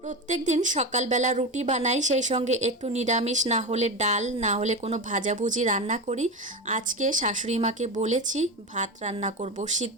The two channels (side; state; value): both; normal; correlation 0.20